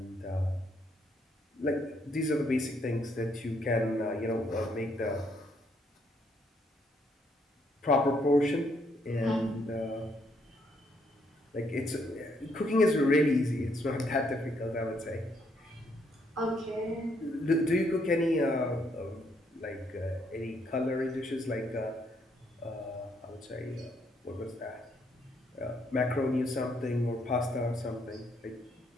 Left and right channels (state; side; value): normal; both; correlation 0.72